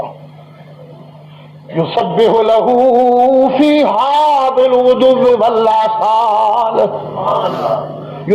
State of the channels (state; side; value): identical; both; correlation 1.00